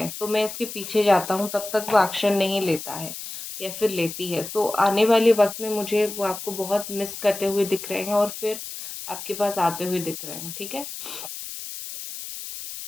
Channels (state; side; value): noise; left; hiss, 9 dB below the sound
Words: तो मैं इसके पीछे जाता हूँ, तब तक वो एक्शन नहीं लेता है, या फिर लेती है। सो आने वाले वक्त में मुझे वो आपको बहुत मिस करते हुए दिख रहे हैं, और फिर आपके पास आते हुए दिख रहे हैं, ठीक है।